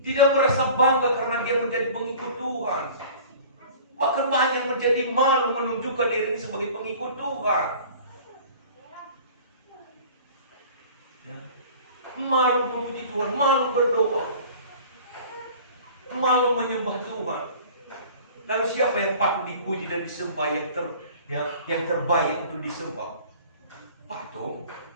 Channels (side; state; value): both; inverted; correlation -0.45